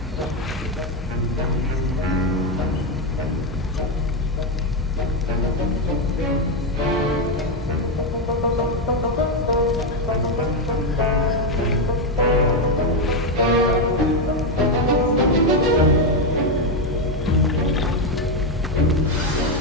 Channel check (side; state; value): both; normal; correlation 0.05